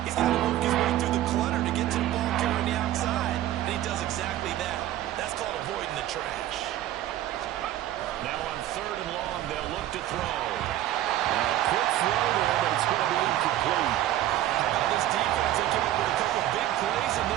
He's got to work his way through the clutter to get to the ball carrier on the outside, and he does exactly that. That's called avoiding the trash. Now on 3rd and long, they'll look to throw. And a quick throw there, but it's going to be incomplete. How about this defense? They came up with a couple big plays in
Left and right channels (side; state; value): left; quieter; 13.5 dB